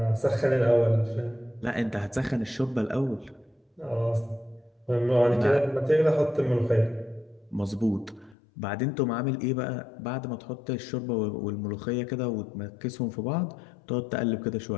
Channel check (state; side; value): drops out; right; at 8.3 s